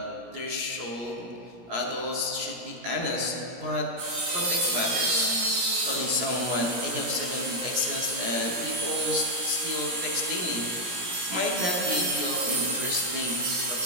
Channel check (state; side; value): late; left; 17 ms